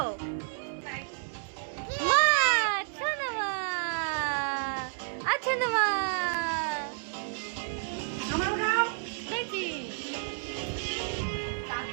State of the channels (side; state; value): left; silent; digital silence